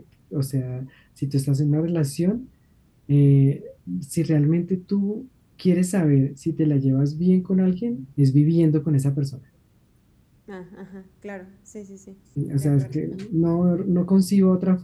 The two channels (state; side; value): identical; both; correlation 1.00